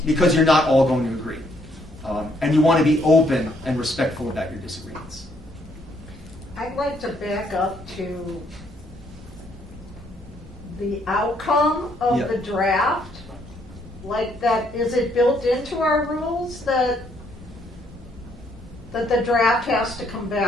Because you're not all going to agree. And you want to be open and respectful about your disagreements. I'd like to back up to the outcome of the draft. Like that, is it built into our rules that the draft has to come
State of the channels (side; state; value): both; normal; correlation 0.69